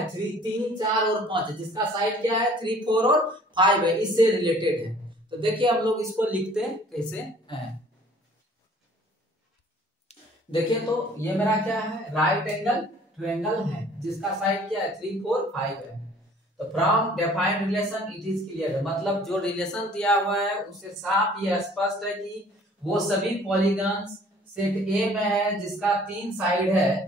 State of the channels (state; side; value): normal; both; correlation 0.54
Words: 3, 4 और 5 है, जिसका साइड क्या है 3, 4 और 5 है, इससे रिलेटेड है। तो देखिए हम लोग इसको लिखते हैं कैसे हैं। देखिए तो ये मेरा क्या है राइट एंगल ट्रायंगल है जिसका साइड क्या है 3, 4, 5 है। तो from defined relation it is clear, मतलब जो रिलेशन दिया हुआ है उससे साफ ये स्पष्ट है कि वो सभी पॉलीगॉन्स सेट ए में है जिसका 3 साइड है,